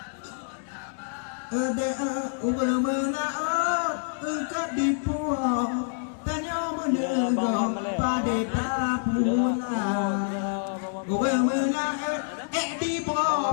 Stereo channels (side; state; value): right; silent; digital silence